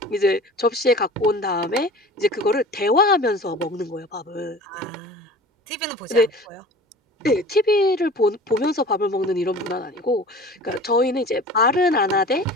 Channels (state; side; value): normal; both; correlation 0.41